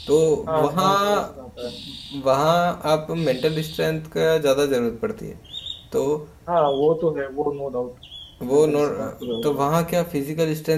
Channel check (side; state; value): both; identical; correlation 1.00